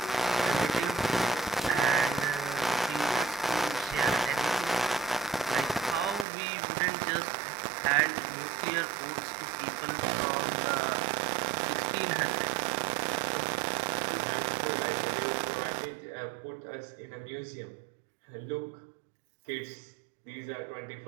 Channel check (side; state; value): left; drops out; at 6.2 s